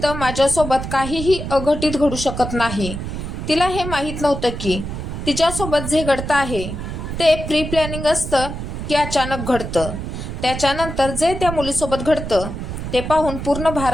माझ्यासोबत काहीही अघटित घडू शकत नाही. तिला हे माहीत नव्हतं की तिच्यासोबत जे घडतं आहे ते प्री प्लॅनिंग असतं की अचानक घडतं. त्याच्यानंतर जे त्या मुलीसोबत घडतं ते पाहून पूर्ण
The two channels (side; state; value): right; noise; rumble, 6 dB below the sound